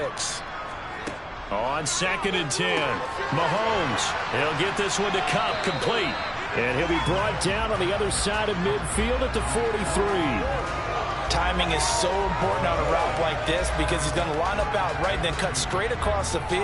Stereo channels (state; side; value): identical; both; correlation 1.00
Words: On 2nd and 10, Mahomes. He'll get this one to Kupp, complete. And he'll be brought down on the other side of midfield at the 43. Timing is so important on a route like this because he's going to line up out right and then cut straight across the